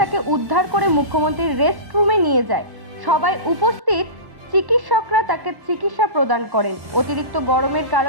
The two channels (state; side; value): late; left; 1.1 ms